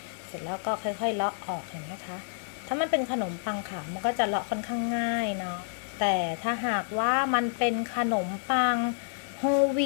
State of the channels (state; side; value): silent; right; digital silence